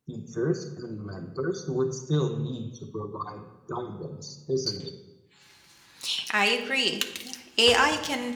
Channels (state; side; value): identical; both; correlation 1.00